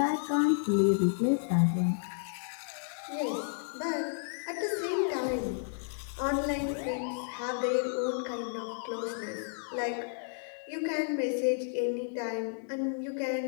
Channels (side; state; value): right; silent; digital silence